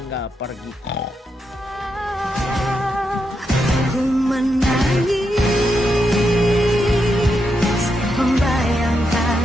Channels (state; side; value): normal; both; correlation 0.83